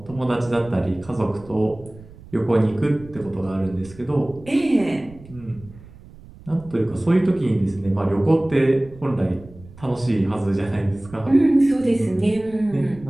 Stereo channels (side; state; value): right; noise; rumble, 20 dB below the sound